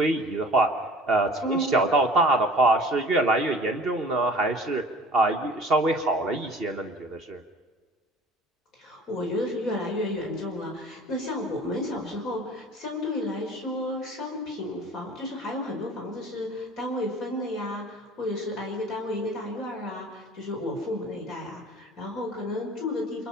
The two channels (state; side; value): normal; both; correlation 0.46